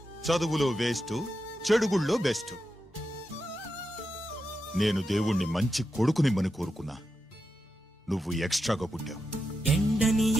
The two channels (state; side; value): normal; both; correlation 0.88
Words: చదువులో వేస్ట్, చెడుగుళ్ళో బెస్ట్. నేను దేవుణ్ణి మంచి కొడుకునిమ్మని కోరుకున్నా. నువ్వు ఎక్స్ట్రాగా పుట్టావు. ఎండని